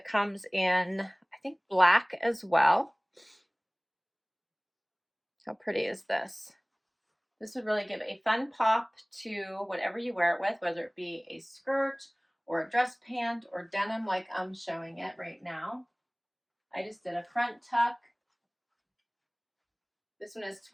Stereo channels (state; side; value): identical; both; correlation 1.00